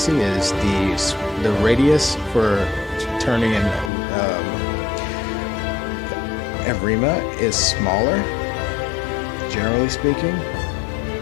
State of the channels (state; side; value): drops out; right; at 3.9 s